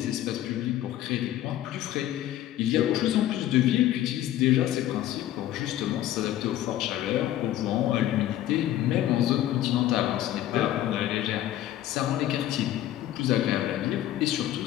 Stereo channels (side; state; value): right; quieter; 13.1 dB